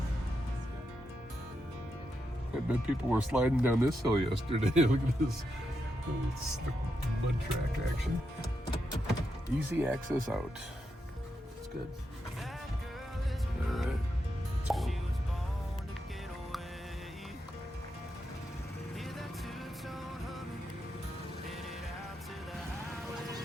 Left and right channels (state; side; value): normal; both; correlation 0.84